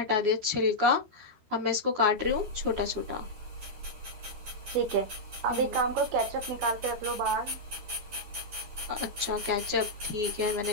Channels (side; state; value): left; late; 13 ms